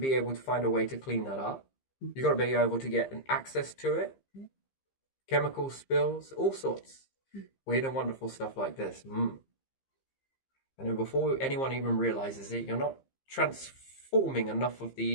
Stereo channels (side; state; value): right; late; 15 ms